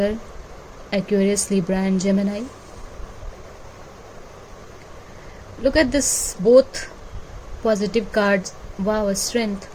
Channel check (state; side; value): identical; both; correlation 1.00